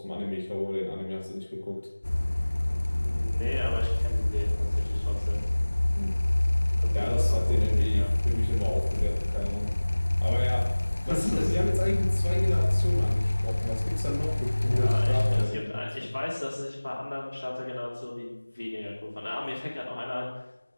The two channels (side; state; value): both; inverted; correlation -1.00